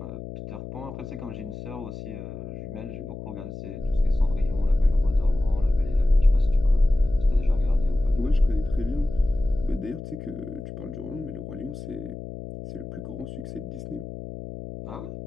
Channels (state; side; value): noise; left; hum, 10 dB below the sound